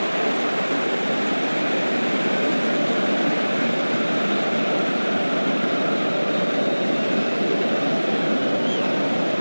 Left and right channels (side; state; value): both; inverted; correlation -1.00